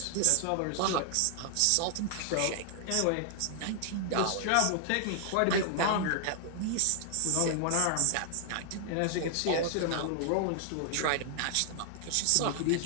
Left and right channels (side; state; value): both; different; correlation 0.00